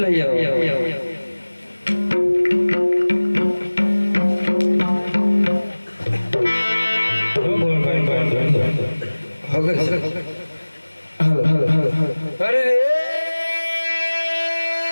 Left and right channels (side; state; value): both; inverted; correlation -1.00